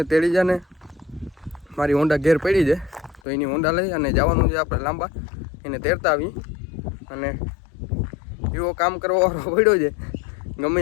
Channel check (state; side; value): drops out; right; at 3.2 s